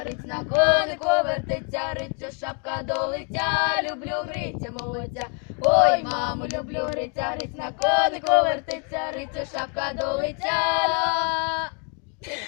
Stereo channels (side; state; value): right; quieter; 39.0 dB